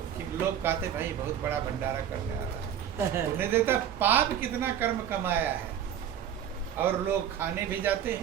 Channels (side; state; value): left; quieter; 9.5 dB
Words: लोग कहते भाई बहुत बड़ा भंडारा करने वाला उन्हें देता। पाप कितना कर्म कमाया है और लोग खाने भी जाते